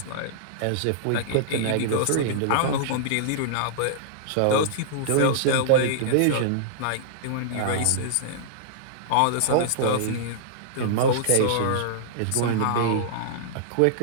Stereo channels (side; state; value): both; different; correlation -0.02